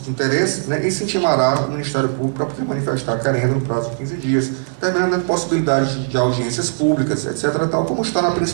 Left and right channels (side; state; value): left; silent; digital silence